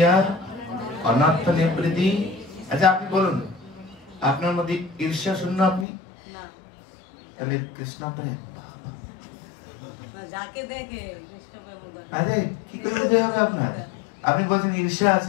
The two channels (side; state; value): right; drops out; at 5.9 s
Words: অনর্থ নিবৃত্তি। আচ্ছা আপনি বলুন, আপনার মধ্যে ঈর্ষা শূন্য আপনি? তাহলে কৃষ্ণ প্রেম আরে কি করে বুঝে হবে আপনার? আপনি বলছেন ঈর্ষা